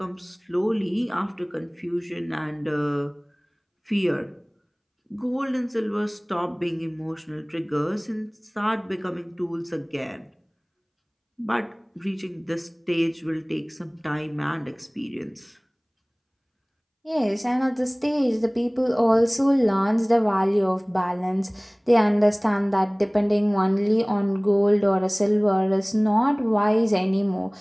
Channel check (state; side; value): identical; both; correlation 1.00